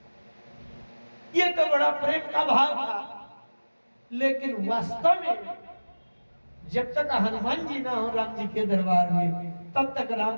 ये तो बड़ा प्रेम का भाव था। लेकिन वास्तव में जब तक हनुमान जी ना हो राम जी के दरबार में, तब तक राम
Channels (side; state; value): both; inverted; correlation -1.00